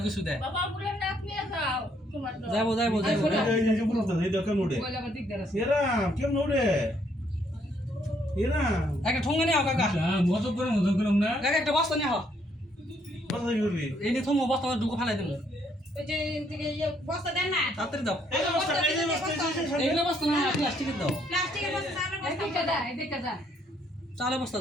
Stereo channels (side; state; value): both; normal; correlation 0.69